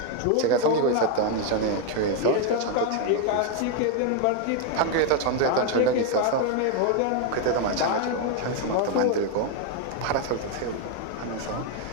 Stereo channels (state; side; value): different; both; correlation 0.01